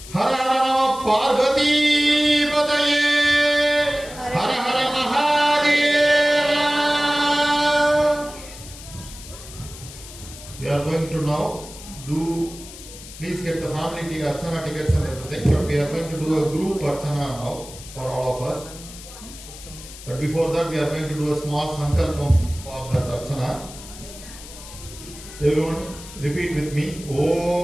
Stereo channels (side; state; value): left; noise; hiss, 15 dB below the sound